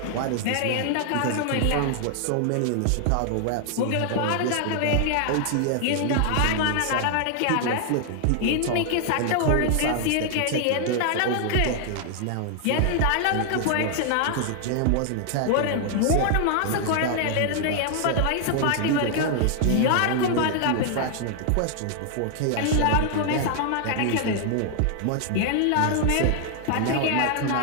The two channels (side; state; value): both; different; correlation 0.00